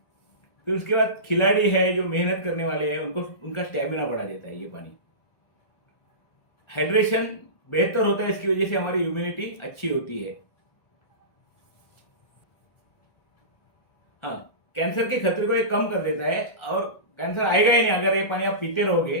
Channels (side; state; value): right; late; 1.4 ms